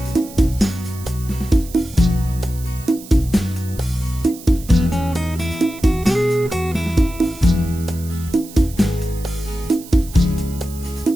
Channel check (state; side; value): noise; right; hiss, 18 dB below the sound